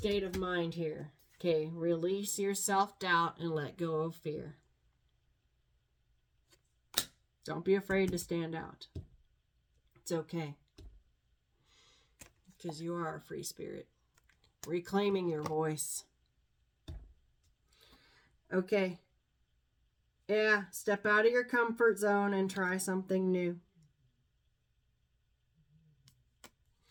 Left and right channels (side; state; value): both; identical; correlation 1.00